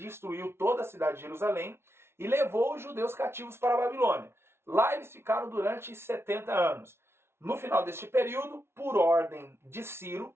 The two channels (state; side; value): late; left; 0.12 ms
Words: toda a cidade de Jerusalém e levou os judeus cativos para a Babilônia. Lá eles ficaram durante 70 anos. No final deste período, por ordem de Ciro,